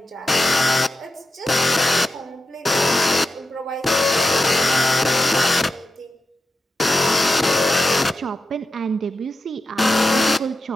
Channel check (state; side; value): normal; both; correlation 0.91